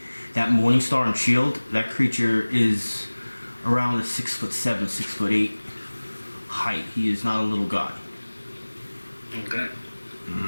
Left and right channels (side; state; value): both; inverted; correlation -1.00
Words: that Morning Star and shield, that creature is around the 6'7", 6'8" height. He is not a little guy. Okay.